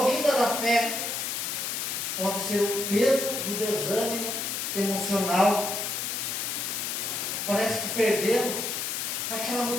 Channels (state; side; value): noise; left; hiss, 2 dB below the sound